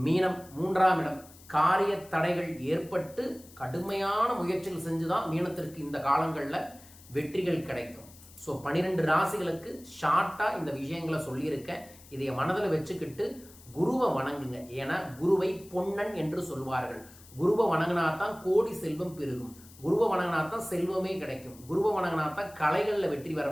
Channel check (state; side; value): noise; left; hiss, 22 dB below the sound